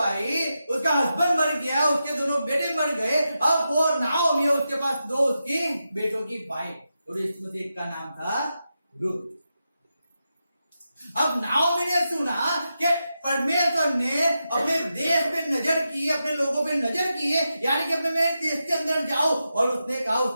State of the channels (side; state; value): both; inverted; correlation -0.88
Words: उसका हस्बैंड मर गया, उसके दोनों बेटे मर गए। अब वो नाओमी है, उसके पास 2 उसकी बेटों की वाइफ, और इसमें से एक का नाम था रुत। अब नाओमी ने सुना कि परमेश्वर ने अपने देश पे नजर की, अपने लोगों पे नजर की है, यानी कि अपने मेरे देश के अंदर जाओ। और उसने कहा,